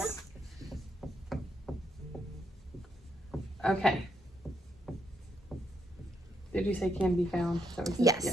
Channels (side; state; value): both; normal; correlation 0.77